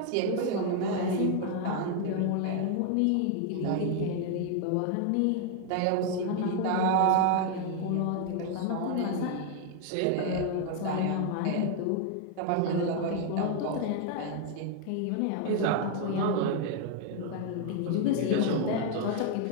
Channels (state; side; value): different; both; correlation 0.00